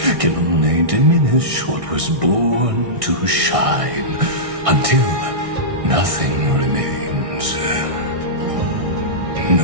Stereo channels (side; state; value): left; late; 1.6 ms